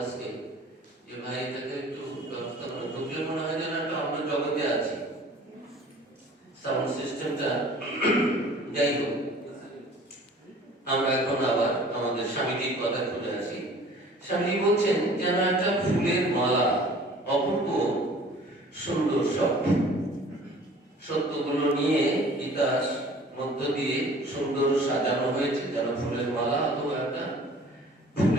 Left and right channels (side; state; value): both; normal; correlation 0.48